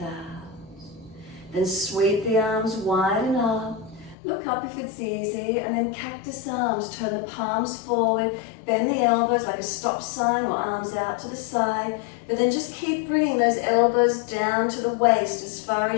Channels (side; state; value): right; drops out; at 4.2 s